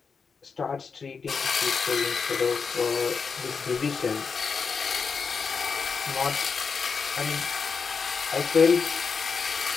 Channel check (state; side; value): quieter; right; 5.4 dB